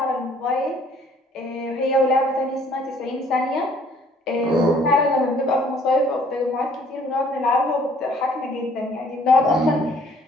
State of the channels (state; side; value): normal; both; correlation 0.59